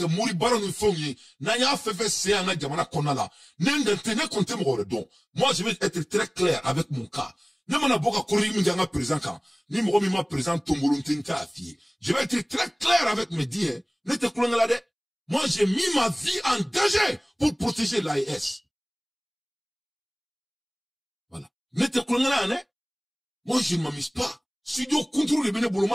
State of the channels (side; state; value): both; identical; correlation 1.00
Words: muri bara nu fonye, na ya fefe se anga jamana konala. N'engante ne compte mo don. Moi je vais être très clair avec mon cas. Ne mana boka kori mi nga présent kan. Ni mo mi ma présent tombolonte nta afie. Je vais être très clair avec mes dires. Ne te kolonga de. Moi j'ai mis ma vie en danger pour protéger l'AES. Voilà. Ne te kolonga ne. Moi je ne m'amuse pas. Si Dieu contrôle les bénévoles,